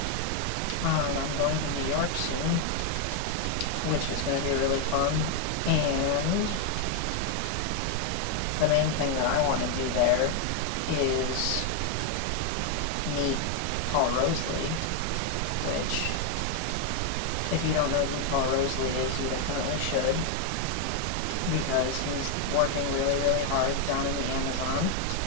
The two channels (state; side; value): different; both; correlation 0.00